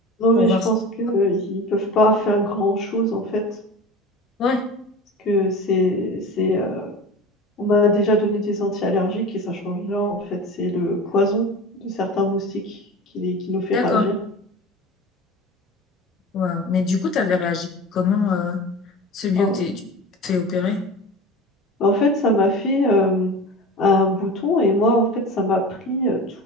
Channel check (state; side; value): normal; both; correlation 0.33